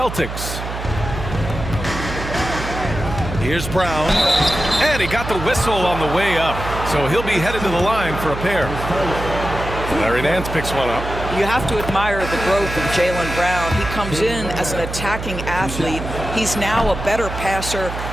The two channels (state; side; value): noise; right; hum, 7 dB below the sound